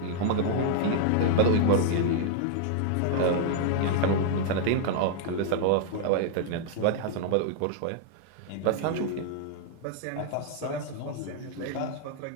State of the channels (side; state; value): both; different; correlation -0.01